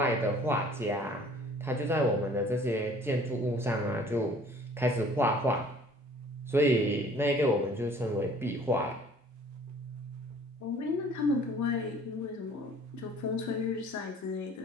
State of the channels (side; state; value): both; normal; correlation 0.53